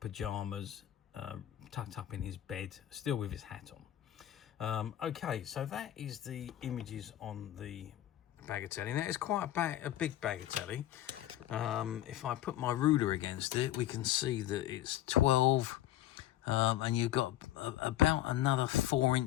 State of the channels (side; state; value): right; quieter; 13.1 dB